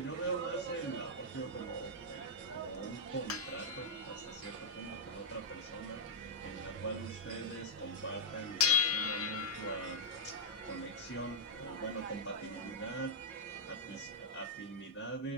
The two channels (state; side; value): normal; both; correlation -0.07